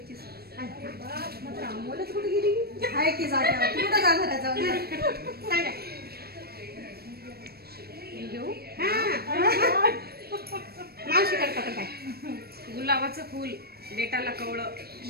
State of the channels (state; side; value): late; left; 0.46 ms